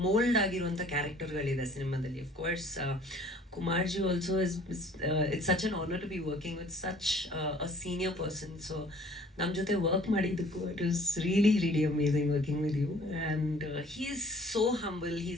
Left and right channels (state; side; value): normal; both; correlation 0.54